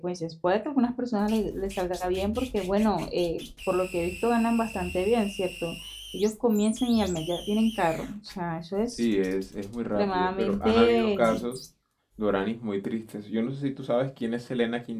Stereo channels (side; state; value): both; identical; correlation 1.00